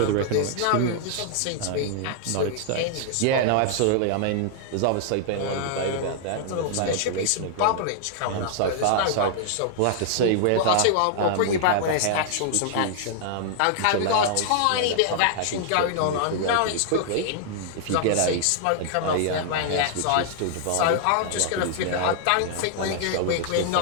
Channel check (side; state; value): both; different; correlation -0.01